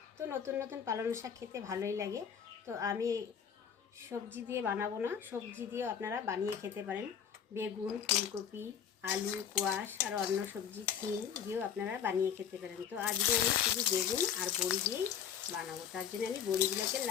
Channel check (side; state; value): right; quieter; 8.1 dB